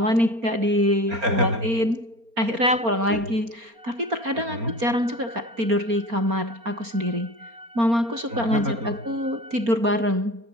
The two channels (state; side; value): late; left; 4.3 ms